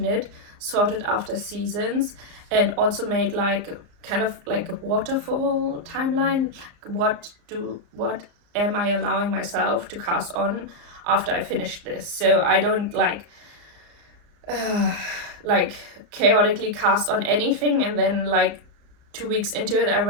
knit, sorted after seasons, and also made like kind of like a waterfall timeline. What am I allowing myself to cast on after I finish this? So I don't like chaotically cast on anything and then like 2 weeks into it I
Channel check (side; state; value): left; late; 34 ms